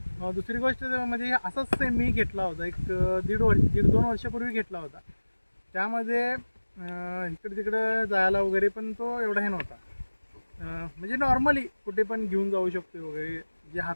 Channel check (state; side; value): inverted; both; correlation -1.00